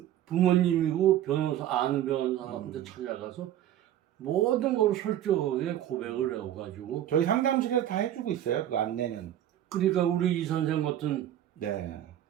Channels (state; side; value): quieter; left; 11.8 dB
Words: 부모님이고 아는 변호사한테 찾아가서 모든 걸 솔직하게 고백을 해가지고 저희 상담실에서 다 해주고 있어요. 그 안내는. 그러니까 우리 이 선생 같은 네.